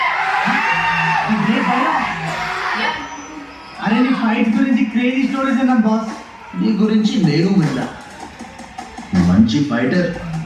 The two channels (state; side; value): identical; both; correlation 1.00